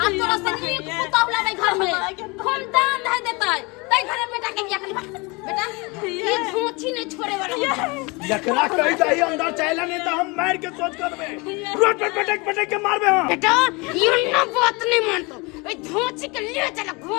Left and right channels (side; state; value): right; quieter; 27.1 dB